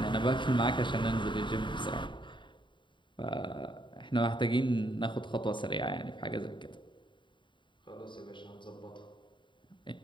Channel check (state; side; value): late; right; 0.23 ms